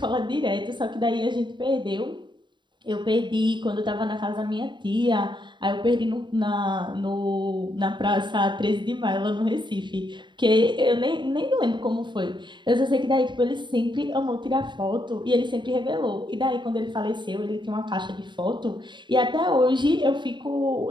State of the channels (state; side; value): late; left; 0.22 ms